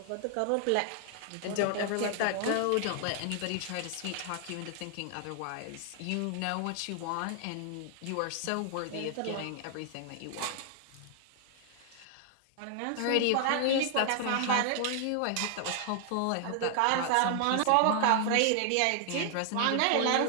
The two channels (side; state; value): both; different; correlation 0.00